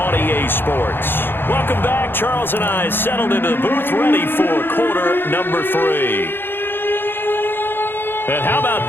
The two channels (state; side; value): late; right; 0.10 ms